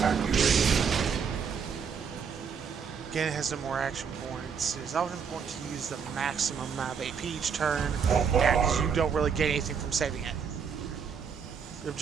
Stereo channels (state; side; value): quieter; left; 6.6 dB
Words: Again, it has no more action points. It is often important to use the maximum amount of AP each turn, because you don't really get anything from saving it. The